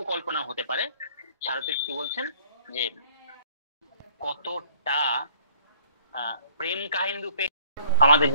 হতে পারে। সারথী কি বলছেন যে কতটা প্রেম কাহিনী রূপে আমাদের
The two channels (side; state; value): both; inverted; correlation -0.57